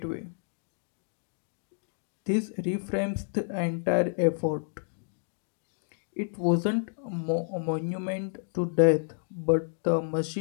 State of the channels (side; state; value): right; silent; digital silence